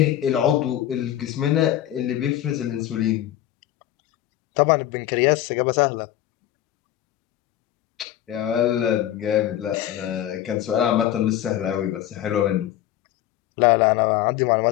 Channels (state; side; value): quieter; right; 12.8 dB